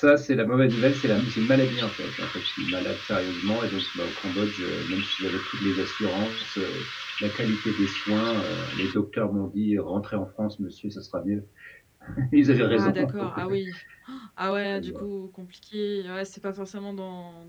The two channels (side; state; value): both; identical; correlation 1.00